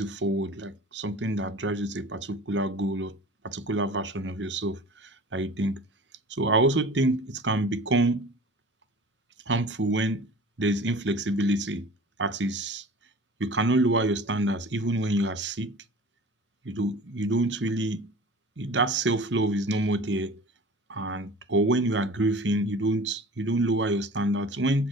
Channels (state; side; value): normal; both; correlation 0.41